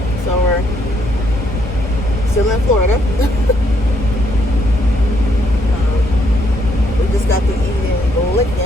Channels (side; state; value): both; normal; correlation 0.72